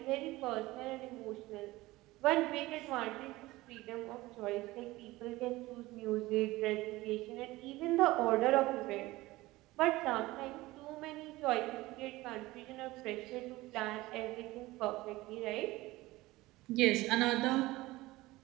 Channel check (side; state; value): left; quieter; 19.1 dB